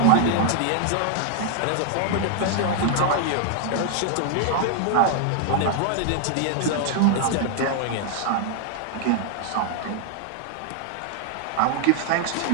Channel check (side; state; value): both; different; correlation 0.00